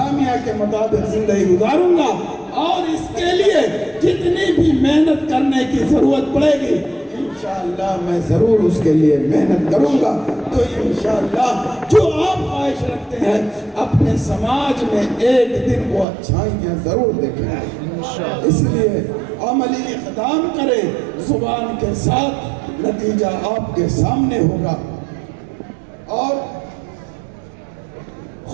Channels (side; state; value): left; drops out; at 16.1 s